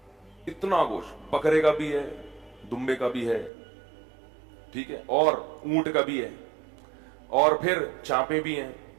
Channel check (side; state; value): left; drops out; at 3.5 s